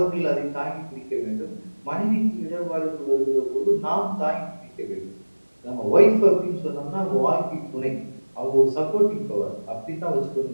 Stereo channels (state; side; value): inverted; both; correlation -1.00